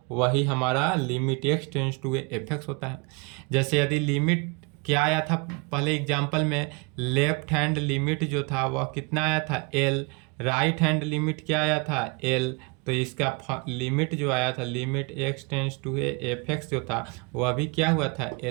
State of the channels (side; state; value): left; quieter; 30.6 dB